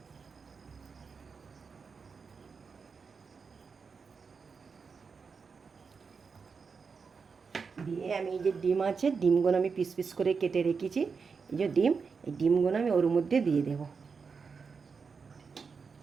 দিয়ে আমি এই যে ডিম আছে, ডিমগুলো আমি পিস পিস করে কেটে রেখেছি। এই যে ডিম, এই ডিমগুলো আমি ওর মধ্যে দিয়ে দেব।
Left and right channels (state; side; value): quieter; left; 5.3 dB